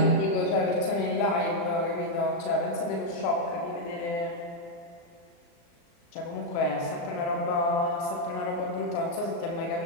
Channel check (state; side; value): late; right; 35 ms